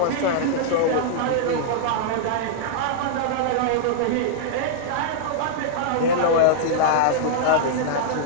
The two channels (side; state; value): both; different; correlation -0.02